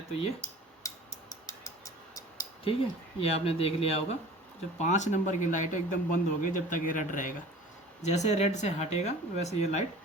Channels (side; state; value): both; normal; correlation 0.43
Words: तो ये, ठीक है, ये आपने देख लिया होगा। जो 5 नंबर की लाइट है एकदम बंद हो गई जब तक ये रेड रहेगा। जैसे रेड से हटेगा वैसे ये लाइट